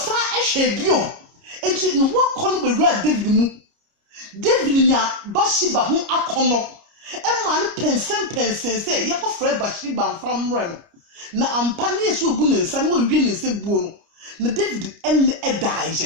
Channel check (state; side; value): late; left; 29 ms